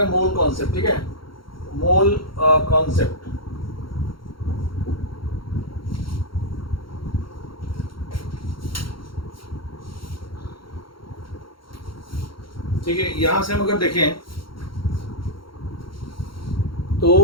हैं मोल कॉन्सेप्ट। ठीक है, मोल कॉन्सेप्ट। ठीक है, यहां से हम अगर देखें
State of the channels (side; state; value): right; late; 0.73 ms